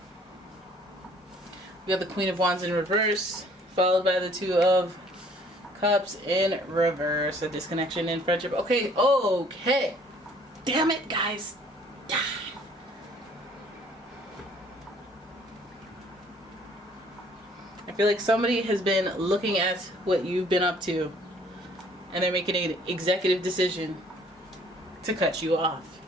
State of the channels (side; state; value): both; normal; correlation 0.58